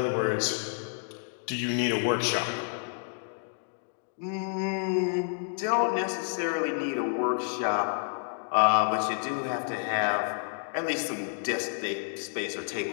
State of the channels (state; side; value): silent; right; digital silence